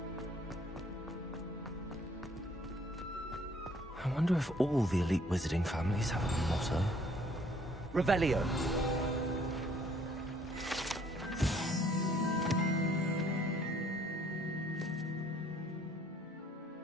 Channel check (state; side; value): normal; both; correlation 0.61